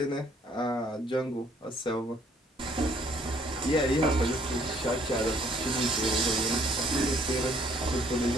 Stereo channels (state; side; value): normal; both; correlation 0.63